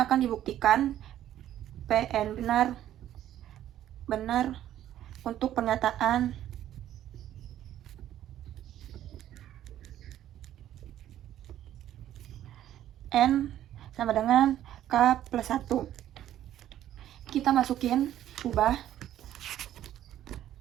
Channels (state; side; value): quieter; left; 12.0 dB